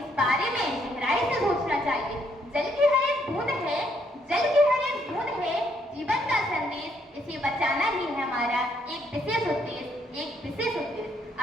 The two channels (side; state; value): both; normal; correlation 0.72